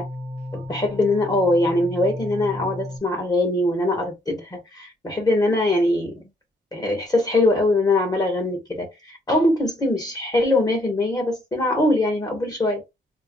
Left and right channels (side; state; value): both; normal; correlation 0.69